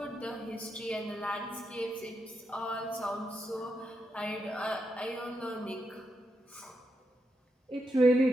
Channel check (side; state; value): both; normal; correlation 0.84